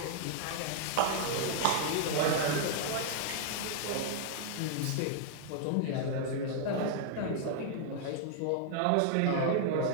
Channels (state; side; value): different; both; correlation -0.01